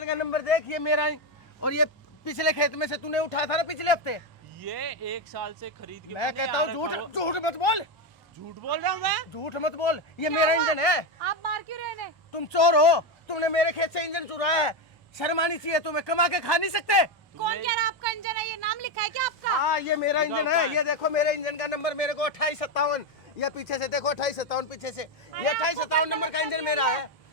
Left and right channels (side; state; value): both; normal; correlation 0.09